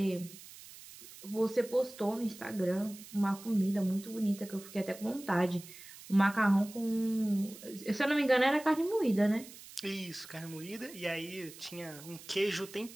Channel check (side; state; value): right; noise; hiss, 17 dB below the sound